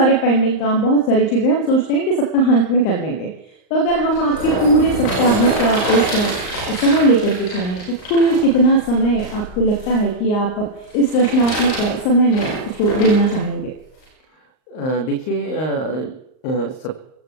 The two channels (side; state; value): right; late; 38 ms